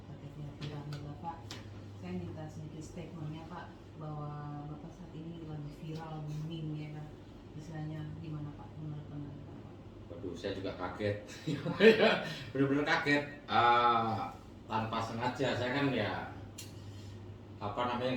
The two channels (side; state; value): both; identical; correlation 1.00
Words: terkaitnya viralnya Bapak. Saya minta sedikit statementnya Pak, bahwa Bapak saat ini lagi viral, booming ya kan, istilahnya gimana Pak menurut pandangan Bapak? Waduh, saya juga kaget. Bener-bener kaget. Tanpa sengaja, saya kan ya